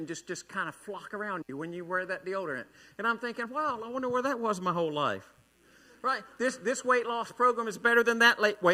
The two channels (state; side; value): identical; both; correlation 1.00